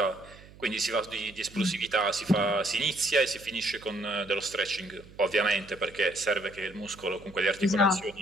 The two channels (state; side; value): noise; right; hum, 21 dB below the sound